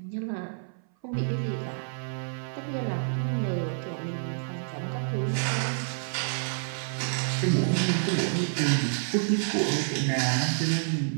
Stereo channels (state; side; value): silent; left; 57 dB below the other